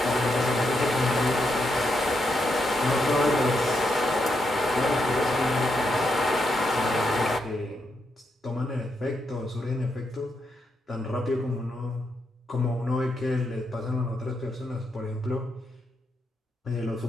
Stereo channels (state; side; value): normal; both; correlation 0.81